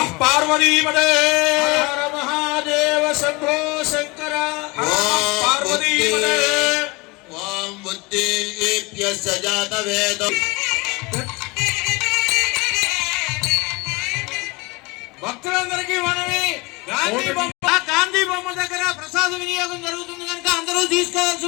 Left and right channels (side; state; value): right; quieter; 25.4 dB